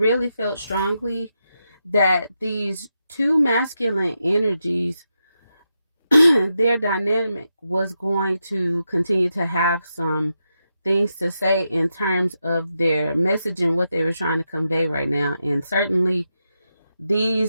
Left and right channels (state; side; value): inverted; both; correlation -0.86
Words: felt strongly that these two masculine energies, their dynamic was going to continue to have some things to say in terms of their message and what they were trying to convey right now. And certainly